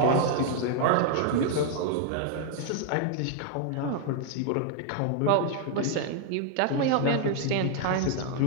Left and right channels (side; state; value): both; different; correlation 0.00